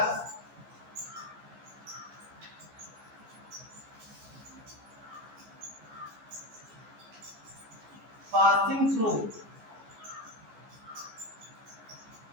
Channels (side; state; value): left; late; 14 ms